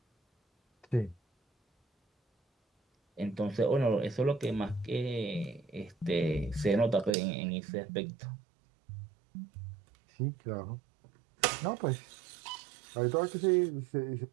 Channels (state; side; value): drops out; left; at 7.1 s